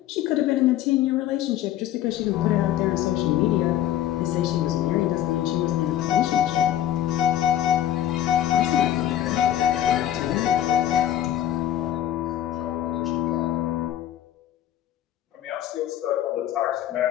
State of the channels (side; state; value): right; quieter; 12.0 dB